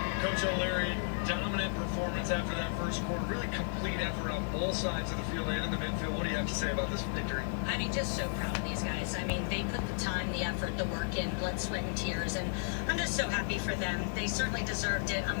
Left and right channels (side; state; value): right; silent; 55 dB below the other